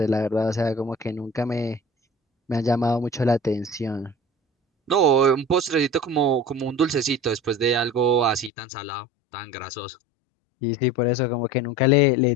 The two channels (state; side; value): drops out; right; at 8.5 s